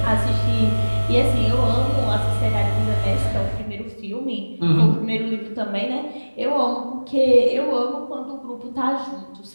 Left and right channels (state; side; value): inverted; both; correlation -1.00